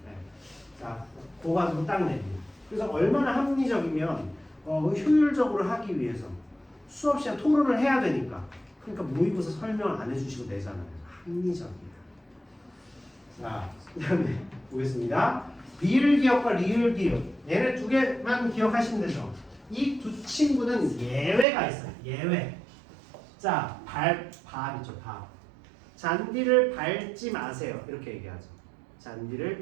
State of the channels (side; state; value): left; drops out; at 21.5 s